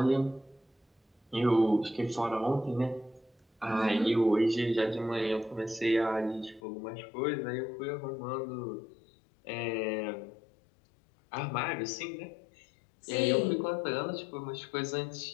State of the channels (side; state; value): right; drops out; at 6.6 s